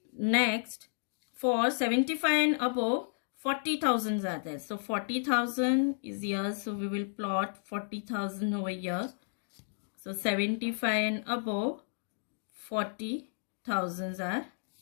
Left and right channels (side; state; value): right; silent; digital silence